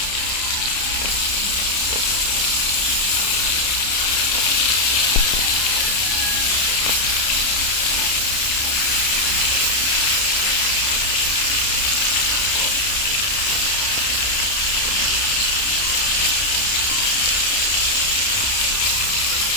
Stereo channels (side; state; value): right; late; 31 ms